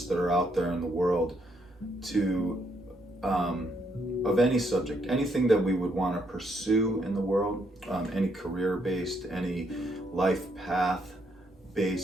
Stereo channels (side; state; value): both; normal; correlation 0.74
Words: that are out there in the world to, of any subject, anything that we would want to pursue in the world, any career-based, any life